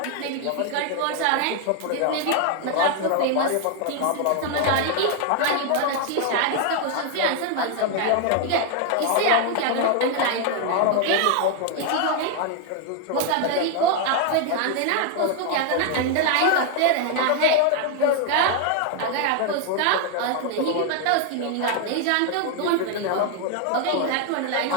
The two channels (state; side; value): different; both; correlation 0.00